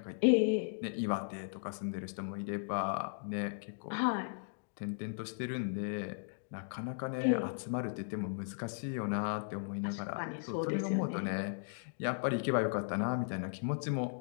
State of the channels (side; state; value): right; silent; digital silence